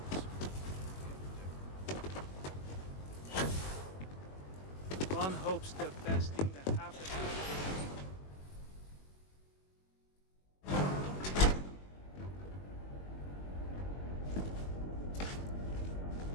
One hopes the best thing that happens.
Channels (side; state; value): right; late; 21 ms